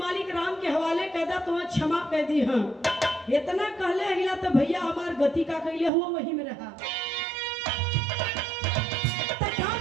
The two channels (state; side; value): drops out; left; at 5.9 s